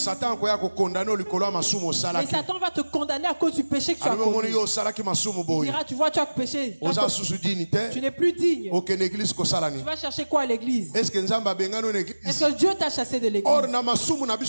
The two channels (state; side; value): inverted; both; correlation -1.00